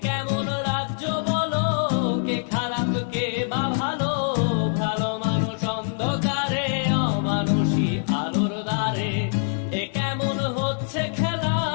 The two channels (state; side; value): silent; right; digital silence